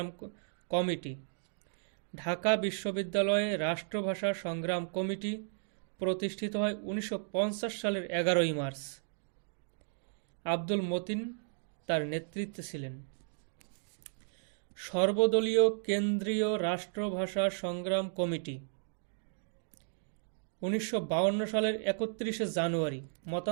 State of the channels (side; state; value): left; silent; digital silence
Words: কমিটি। ঢাকা বিশ্ববিদ্যালয়ে রাষ্ট্রভাষা সংগ্রাম কমিটি প্রতিষ্ঠিত হয় 1950 সালের 11 মার্চ। আব্দুল মতিন তার নেতৃত্বে ছিলেন। সর্বদলীয় কেন্দ্রীয় রাষ্ট্রভাষা সংগ্রাম কমিটি 1952 সালের 31 জানুয়ারি,